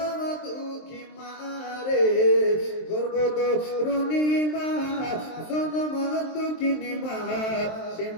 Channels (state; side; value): late; right; 23 ms